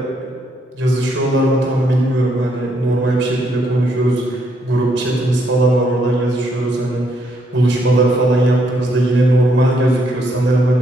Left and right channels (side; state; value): both; normal; correlation 0.74